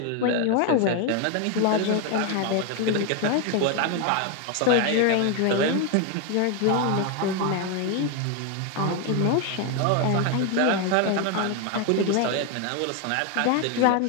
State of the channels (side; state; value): both; different; correlation 0.01